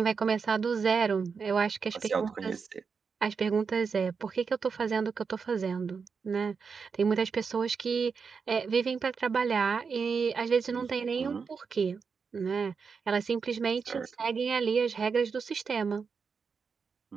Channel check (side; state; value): left; quieter; 5.6 dB